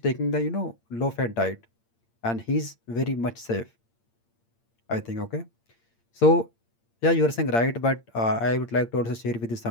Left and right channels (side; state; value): right; late; 8.7 ms